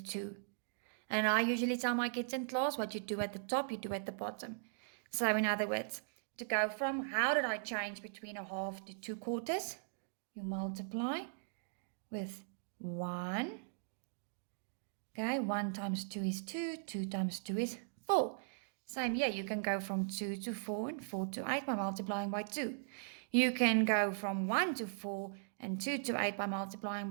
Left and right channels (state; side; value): silent; left; digital silence